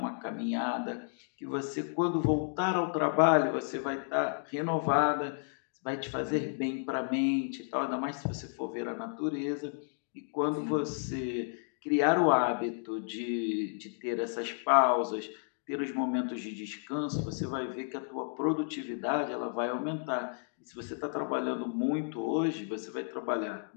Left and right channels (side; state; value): right; silent; digital silence